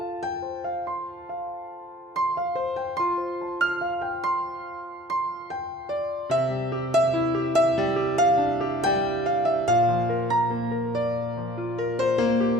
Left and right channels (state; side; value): normal; both; correlation 0.51